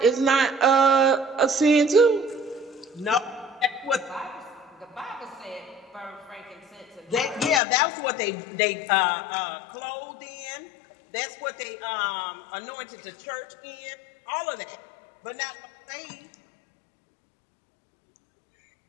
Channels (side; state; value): right; drops out; at 7.6 s